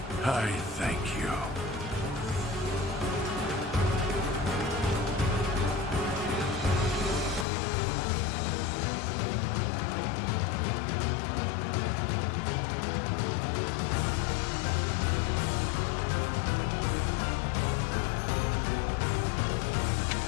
I thank you.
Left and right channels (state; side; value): drops out; right; at 7.5 s